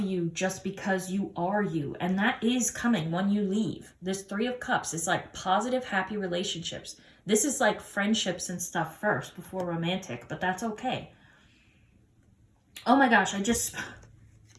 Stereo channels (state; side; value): identical; both; correlation 1.00